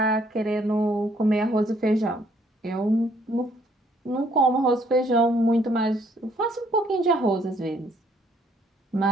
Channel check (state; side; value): normal; both; correlation 0.66